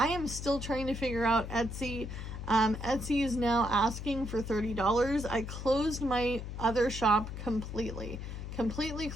am still trying to figure out Etsy. Etsy is now asking for $30. I closed my other shop completely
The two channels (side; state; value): left; noise; hum, 7 dB below the sound